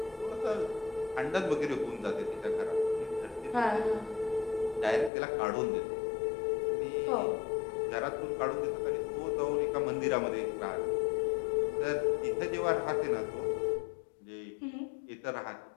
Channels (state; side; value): drops out; right; at 5.1 s